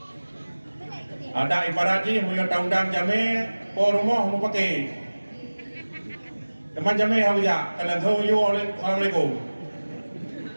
Ada ibaratnya, punya undang jame, po rumah mau pakai. Teman jame hawiya, kalau tu yo, assalamualaikum.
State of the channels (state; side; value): inverted; both; correlation -1.00